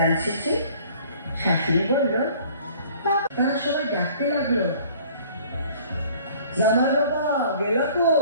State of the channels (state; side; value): inverted; both; correlation -0.52